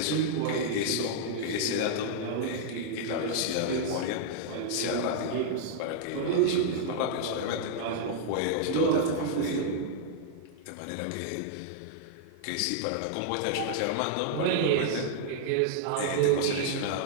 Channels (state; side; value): different; both; correlation -0.01